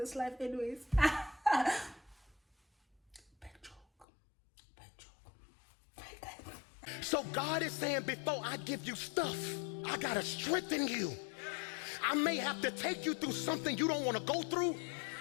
life anyways? So God is saying, before I give you stuff, I gotta strengthen you. I may have to take you through something you don't want to go through,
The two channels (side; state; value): right; drops out; at 4.0 s